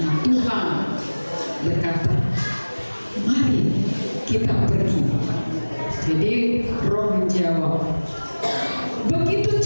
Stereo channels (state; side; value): inverted; both; correlation -1.00